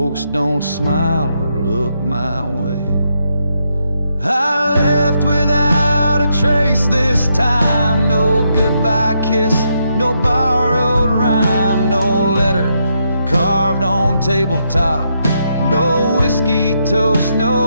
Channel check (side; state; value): both; inverted; correlation -0.79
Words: don't smile or look my way. I left without a trace this time. No goodbye kiss, no borrowed rhyme, no letter carved on tabletop, no whiskey toast,